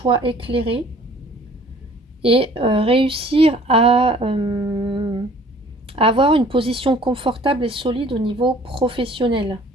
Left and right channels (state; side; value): normal; both; correlation 0.53